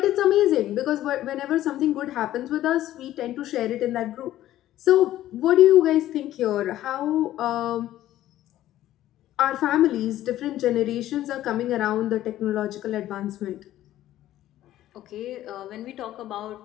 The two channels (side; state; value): right; quieter; 13.6 dB